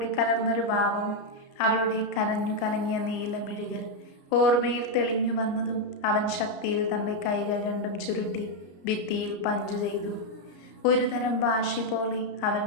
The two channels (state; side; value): late; right; 33 ms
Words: കലർന്നൊരു ഭാവം. അവളുടെ കരഞ്ഞു കലങ്ങിയ നീലമിഴികൾ ഓർമ്മയിൽ തെളിഞ്ഞു വന്നതും അവൻ ശക്തിയിൽ തൻ്റെ കൈകൾ രണ്ടും ചുരുട്ടി ഭിത്തിയിൽ പഞ്ച് ചെയ്തു. ഒരു തരം വാശി പോലെ അവൻ